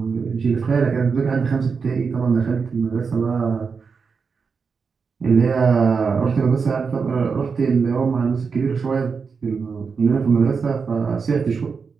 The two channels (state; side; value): quieter; left; 5.4 dB